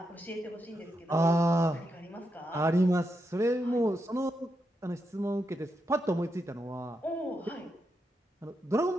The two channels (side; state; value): both; normal; correlation 0.84